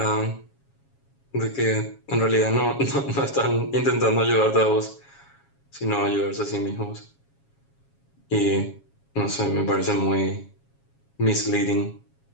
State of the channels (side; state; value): right; late; 7.3 ms